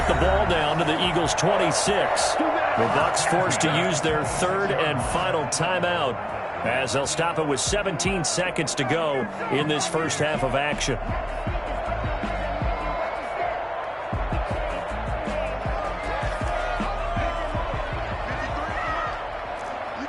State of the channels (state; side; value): identical; both; correlation 1.00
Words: the ball down to the Eagles' 26. The Bucs forced to use their third and final timeout as they'll stop it with 17 seconds to go in this first half of action.